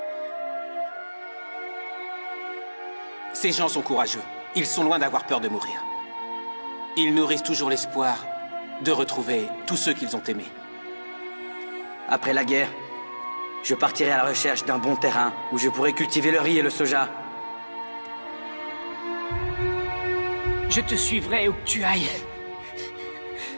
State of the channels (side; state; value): both; inverted; correlation -1.00